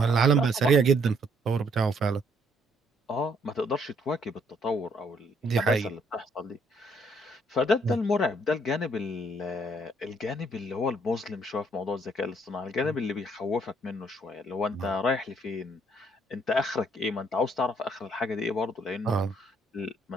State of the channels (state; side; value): normal; both; correlation 0.67